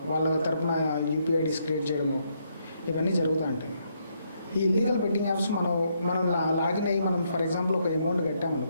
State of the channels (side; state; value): both; inverted; correlation -0.75